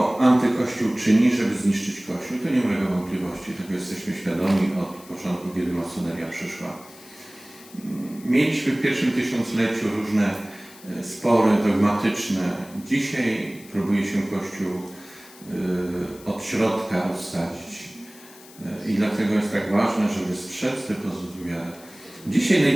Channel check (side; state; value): left; noise; hiss, 21 dB below the sound